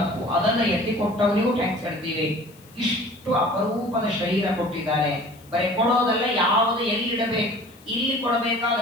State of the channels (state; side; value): noise; left; hiss, 26 dB below the sound